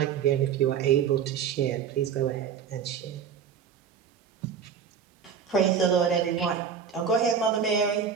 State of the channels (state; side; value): quieter; left; 7.3 dB